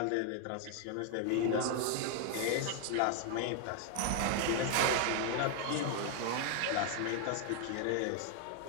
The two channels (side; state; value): both; different; correlation 0.00